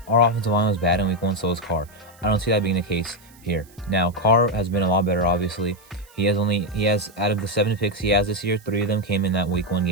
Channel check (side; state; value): right; noise; hiss, 27 dB below the sound